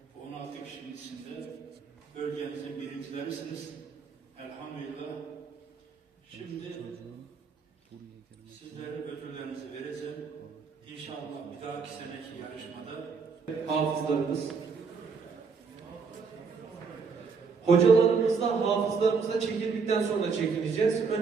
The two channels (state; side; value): quieter; left; 5.2 dB